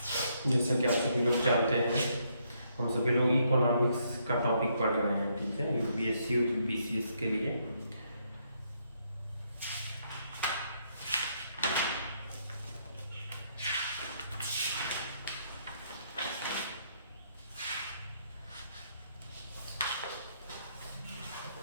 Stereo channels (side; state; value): both; inverted; correlation -0.74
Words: जैसा कि आप सभी लोग जानते हैं, हम सभी लोग इकोनॉमिक्स का टॉपिक पढ़ रहे हैं, ठीक है, यूपीएससी और बीसीएस के लिए।